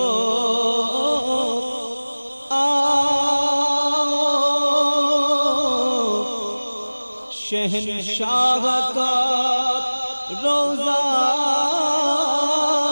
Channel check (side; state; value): both; inverted; correlation -1.00